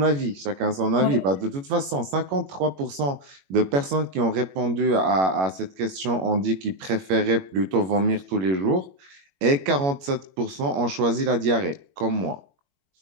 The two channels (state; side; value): late; left; 21 ms